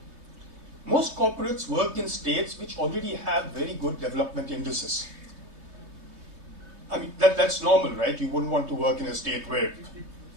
most corporates work in states which already have very good development indices. I mean, that's normal, right? You wouldn't want to work in a state where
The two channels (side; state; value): left; late; 3.1 ms